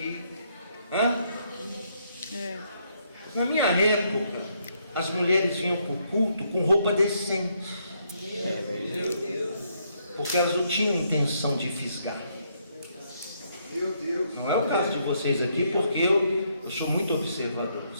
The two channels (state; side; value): inverted; both; correlation -0.73